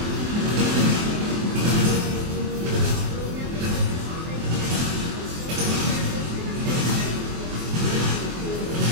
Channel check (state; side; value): late; left; 24 ms